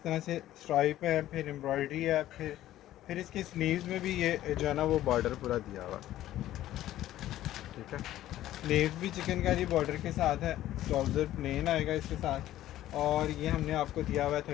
तरह से स्ट्राइप है, फिर एम्ब्रॉयडरी है, फिर इसकी स्लीव्स में भी ये जो है ना वो बॉर्डर पूरा दिया हुआ, ठीक है। स्लीव्स भी चिकनकारी बॉर्डर के साथ है, ट्राउज़र प्लेन आएगा इसके साथ, और ये हमने आपको दिया हुआ है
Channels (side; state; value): right; quieter; 13.7 dB